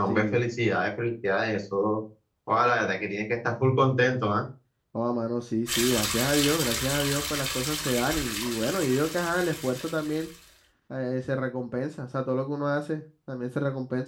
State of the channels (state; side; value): identical; both; correlation 1.00